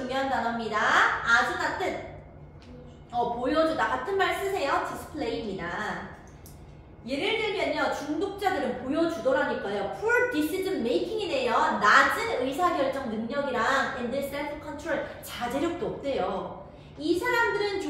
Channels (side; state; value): both; identical; correlation 1.00